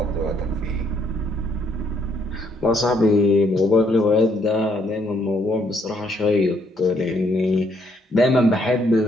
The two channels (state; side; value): normal; both; correlation 0.70